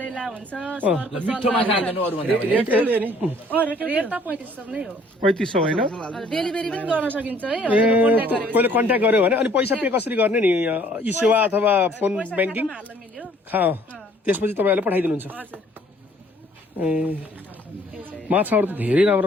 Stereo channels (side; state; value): both; normal; correlation 0.59